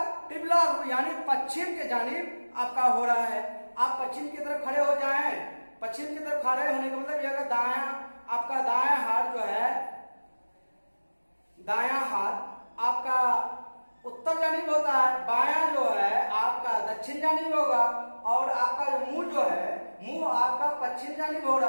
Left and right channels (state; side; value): inverted; both; correlation -1.00